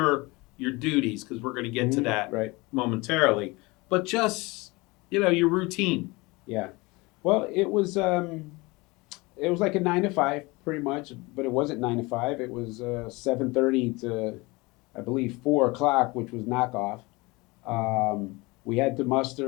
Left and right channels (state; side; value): quieter; right; 24.0 dB